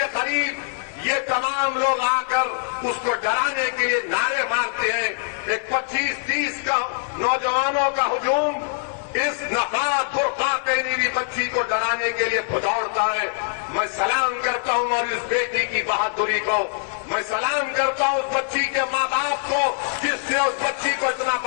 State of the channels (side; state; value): right; silent; 63 dB below the other